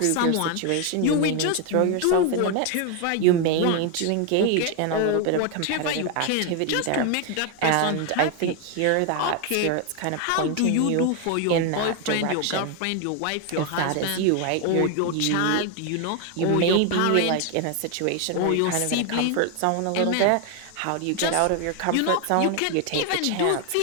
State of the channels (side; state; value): both; different; correlation 0.01